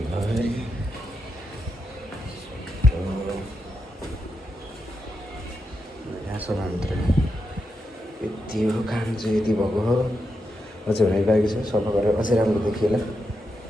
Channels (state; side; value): normal; both; correlation 0.85